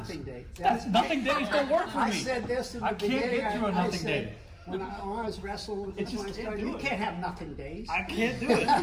day. That's nothing days don't work for me. I said this in the I can't beginning. get through a I nothing said, day. When I was wrestling with It this, just when I can't started, do you it. can't have nothing days. I can't do it.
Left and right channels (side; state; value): both; identical; correlation 1.00